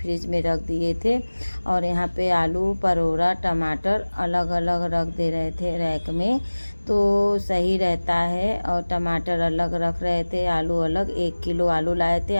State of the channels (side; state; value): both; inverted; correlation -1.00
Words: में रख दिए थे। और यहाँ पे आलू, परोरा, टमाटर अलग अलग रख दे रहे थे रैक में, तो सही रहता है। और टमाटर अलग रख रहे थे, आलू अलग। 1 किलो आलू लाए थे,